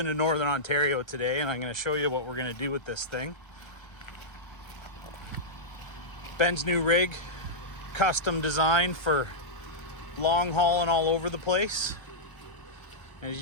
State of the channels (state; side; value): late; right; 1.3 ms